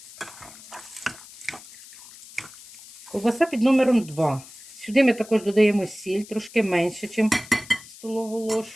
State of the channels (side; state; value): left; noise; hiss, 18 dB below the sound